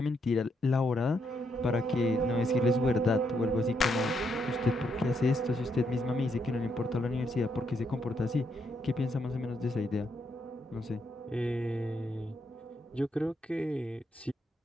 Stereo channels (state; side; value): normal; both; correlation 0.77